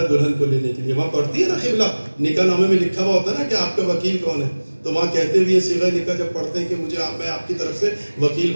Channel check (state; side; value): inverted; both; correlation -1.00